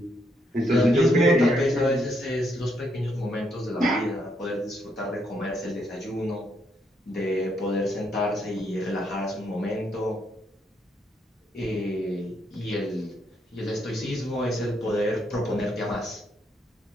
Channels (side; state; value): both; normal; correlation 0.75